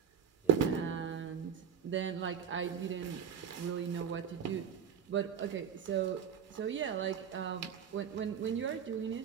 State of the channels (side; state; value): left; quieter; 7.7 dB